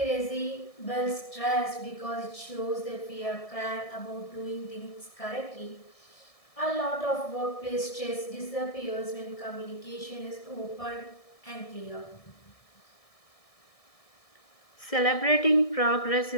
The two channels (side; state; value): right; late; 1.6 ms